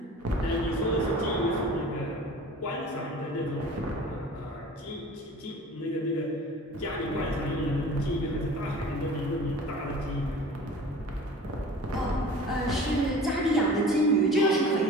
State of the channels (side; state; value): both; normal; correlation 0.42